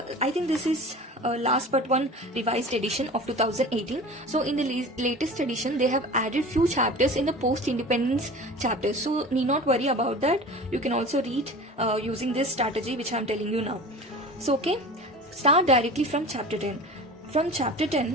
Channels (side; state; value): both; normal; correlation 0.37